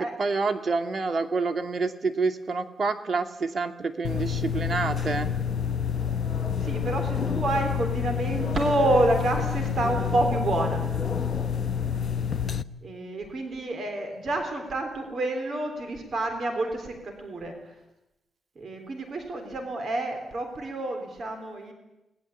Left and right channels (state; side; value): normal; both; correlation 0.67